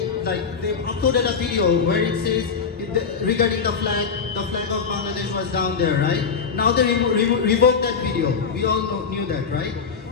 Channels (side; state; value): right; quieter; 5.8 dB